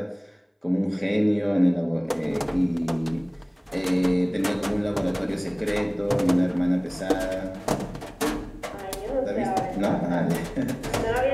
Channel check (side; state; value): both; identical; correlation 1.00